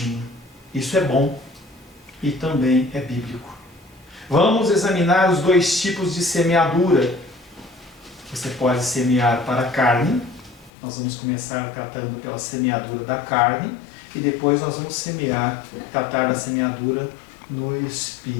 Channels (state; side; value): drops out; right; at 10.7 s